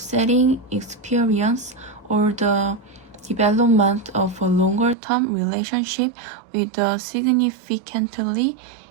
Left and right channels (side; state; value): left; drops out; at 5.0 s